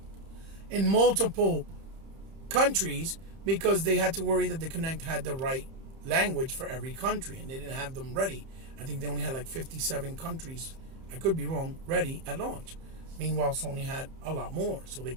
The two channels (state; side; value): late; left; 30 ms